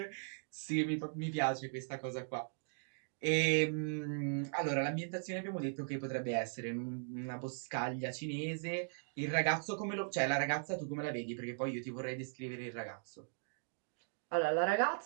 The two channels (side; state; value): left; silent; digital silence